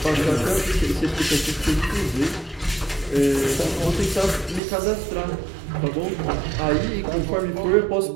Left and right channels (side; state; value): left; drops out; at 4.6 s